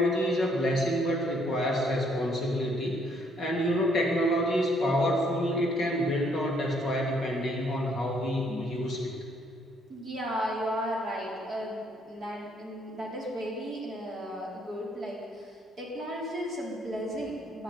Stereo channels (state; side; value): normal; both; correlation 0.67